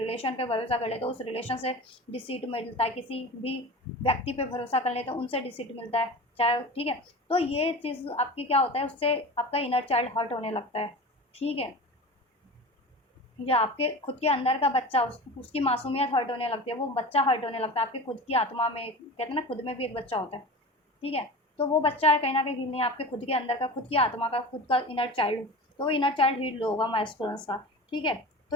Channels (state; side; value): normal; both; correlation 0.32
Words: पे भरोसा कर ले तो उस रिलेशन से डिसीट मिलता है, किसी भी व्यक्ति पे भरोसा कर ले तो उनसे डिसीट मिलता है, चाहे, ठीक है। तो ये चीज़ आपकी क्या होता है, उससे आपका इनर चाइल्ड हर्ट होने लगता है, ठीक है, या आपके खुद के अंदर का बच्चा, उसकी मासूमियत हर्ट होने लगती है, वो बच्चा हर्ट होने लगता है आपकी खुद की आत्मा में, कहते हैं ना खुद में भी एक बच्चा होता है, ठीक है। तो वो बच्चा कहीं ना कहीं हील नहीं है, आपके खुद के अंदर का, खुद की आत्मा का, खुद का इनर चाइल्ड, तो वो इनर चाइल्ड हील होगा मैस्कुलिन्स का, ठीक है। तो